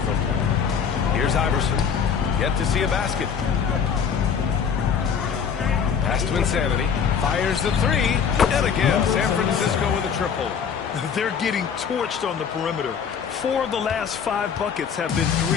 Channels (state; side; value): quieter; right; 7.0 dB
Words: them. Here's Iverson. Yet to see a basket. Pass to Insanity. Fires the 3. And again, San Francisco with a triple. They're getting torched on the perimeter. 4 of the last 5 buckets have been